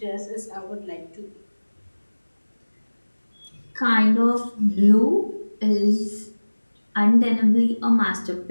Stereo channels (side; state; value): both; inverted; correlation -1.00